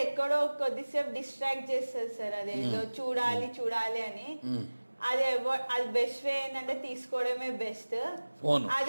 ఎక్కడో కొద్దిసేపు డిస్ట్రాక్ట్ చేస్తుంది సార్. అదేదో చూడాలి అని. అది బెస్ట్ వే ఏంటంటే తీసుకోవడమే బెస్ట్.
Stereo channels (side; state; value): both; inverted; correlation -1.00